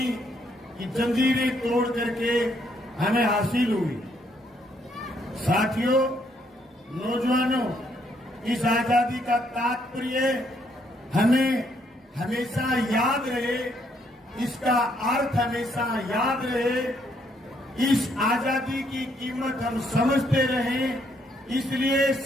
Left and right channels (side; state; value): both; normal; correlation 0.71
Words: की जंजीरें तोड़ करके हमें हासिल हुई। साथियों, नौजवानों, इस आजादी का तात्पर्य हमें हमेशा याद रहे, इसका अर्थ हमेशा याद रहे, इस आजादी की कीमत हम समझते रहें। इसलिए